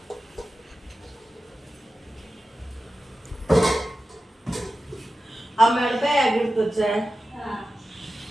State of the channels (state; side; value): normal; both; correlation 0.93